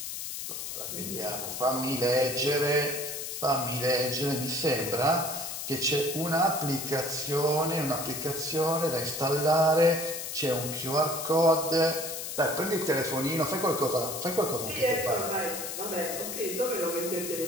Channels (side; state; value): left; noise; hiss, 6 dB below the sound